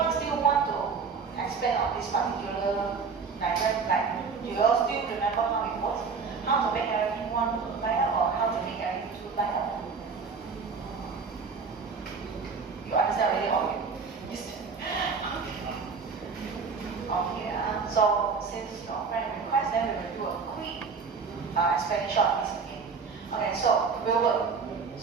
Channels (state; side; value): quieter; left; 5.3 dB